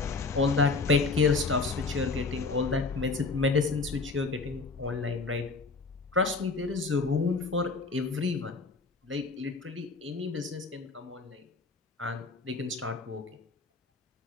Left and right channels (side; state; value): right; quieter; 4.0 dB